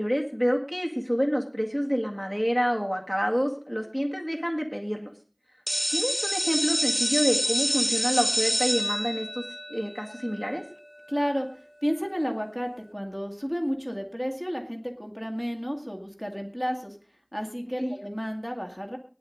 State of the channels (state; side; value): identical; both; correlation 1.00